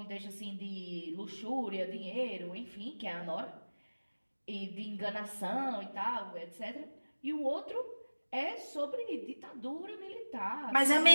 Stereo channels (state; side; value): inverted; both; correlation -1.00